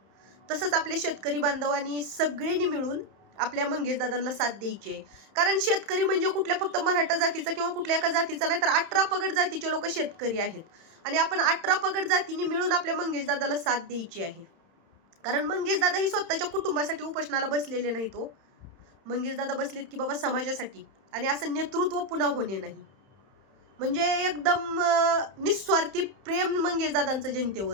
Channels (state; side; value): late; left; 31 ms